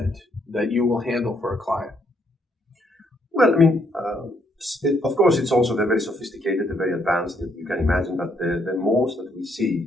that you will handle for a client. Well, I mean, of course, it's also very sophisticated, very advanced. You can imagine that the most that we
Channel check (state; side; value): normal; both; correlation 0.72